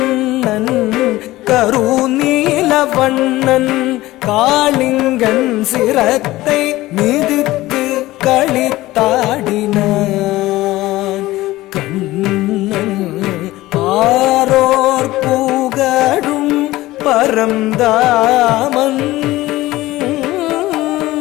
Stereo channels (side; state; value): right; quieter; 17.6 dB